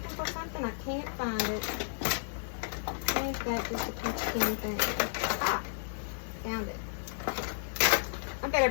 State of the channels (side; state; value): right; silent; digital silence